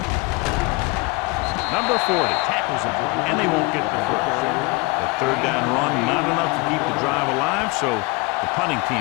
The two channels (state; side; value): quieter; right; 25.8 dB